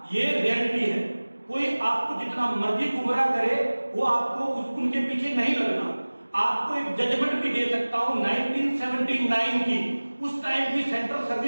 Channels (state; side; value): inverted; both; correlation -1.00